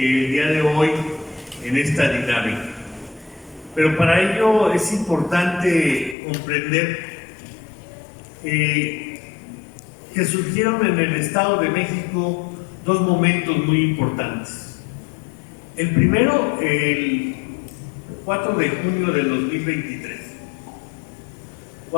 día de hoy en esta dinámica. Pero para ello es importante comprender que surgieron en el Estado de México dos momentos muy importantes. El primero, el 4 de junio del 2023,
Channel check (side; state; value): right; drops out; at 6.2 s